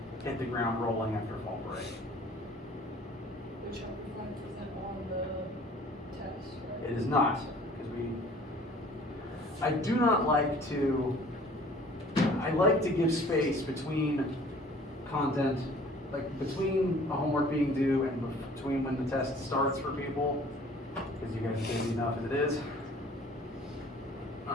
hit the ground rolling after fall break. The Chapter 5 isn't on the test, right? It is not, because I do not like to, I like to give space between content, like between a homework being due and between when the test starts for people, because you guys are busy enough as it is.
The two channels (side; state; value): both; normal; correlation 0.51